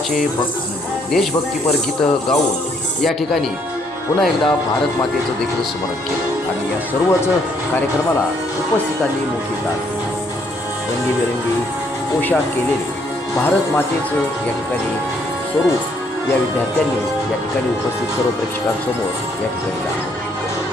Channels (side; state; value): both; normal; correlation 0.68